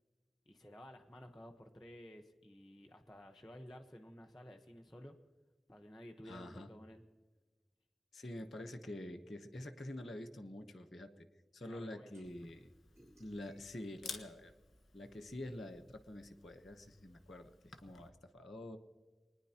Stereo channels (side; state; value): both; normal; correlation 0.88